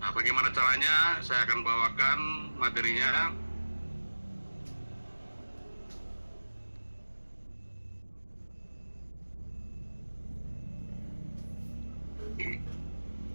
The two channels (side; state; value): both; inverted; correlation -1.00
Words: Nah, bagaimana caranya? Saya akan bawakan materinya.